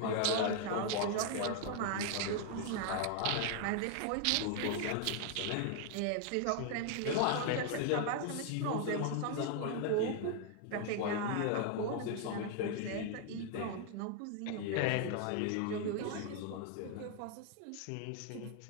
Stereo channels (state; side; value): different; both; correlation 0.00